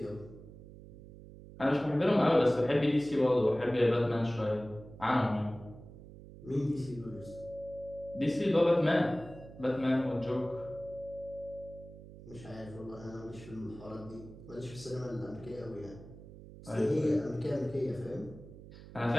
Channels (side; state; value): right; noise; hum, 17 dB below the sound